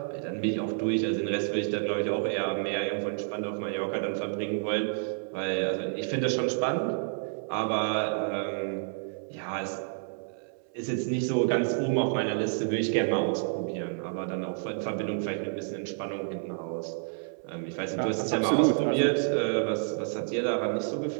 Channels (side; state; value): left; silent; 58 dB below the other